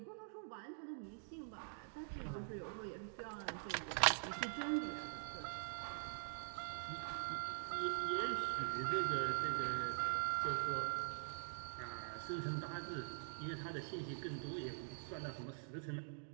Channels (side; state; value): left; silent; digital silence